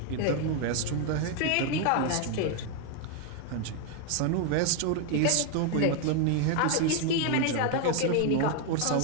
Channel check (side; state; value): both; different; correlation 0.01